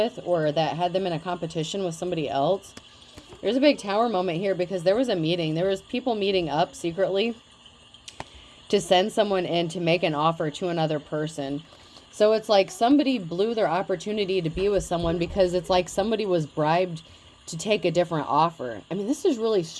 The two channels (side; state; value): both; identical; correlation 1.00